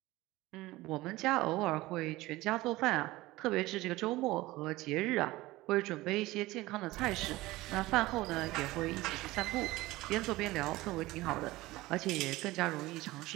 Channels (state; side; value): quieter; left; 18.9 dB